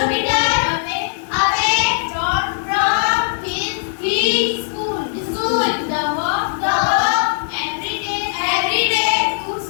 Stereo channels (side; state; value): right; silent; digital silence